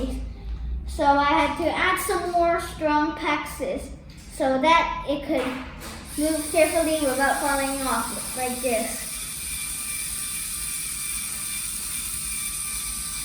So I had to add some more strong packs so that it could move carefully without falling off like this.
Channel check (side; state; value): both; identical; correlation 1.00